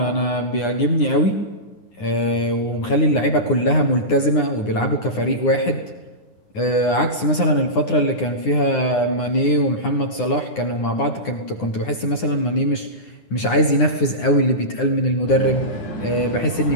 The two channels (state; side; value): late; right; 9.7 ms